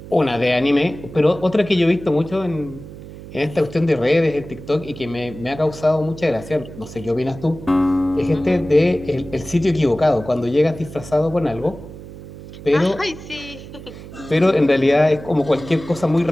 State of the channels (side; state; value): right; noise; hum, 15 dB below the sound